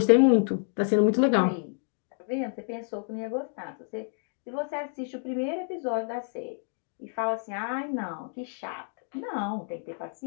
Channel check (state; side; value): silent; right; 59 dB below the other